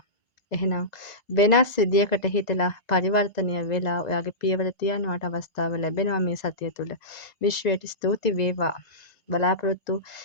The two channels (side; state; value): right; late; 1.9 ms